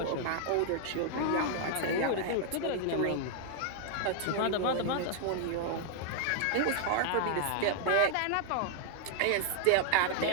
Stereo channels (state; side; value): different; both; correlation 0.00